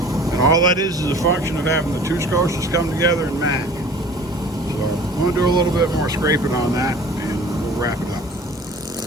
And all that is a function of having the two scotias come together and match. So I'm going to do a little bit more scraping on that, and we'll wrap it up.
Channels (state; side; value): normal; both; correlation 0.46